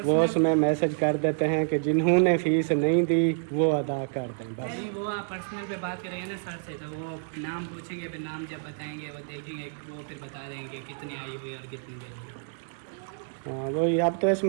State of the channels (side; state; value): left; silent; digital silence